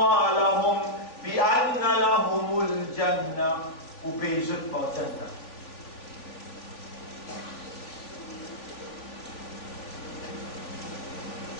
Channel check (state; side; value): late; right; 3.4 ms